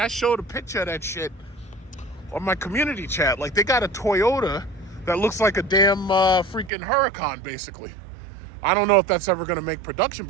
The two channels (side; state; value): left; drops out; at 6.7 s